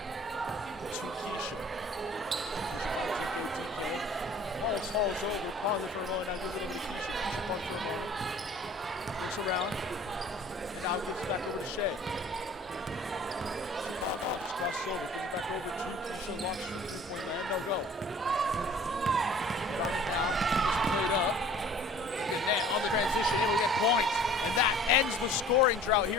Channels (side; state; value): both; normal; correlation 0.49